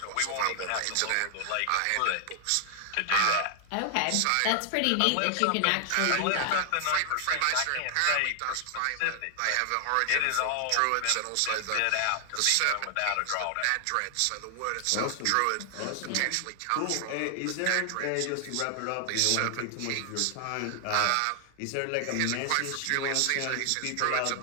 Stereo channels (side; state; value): both; different; correlation 0.00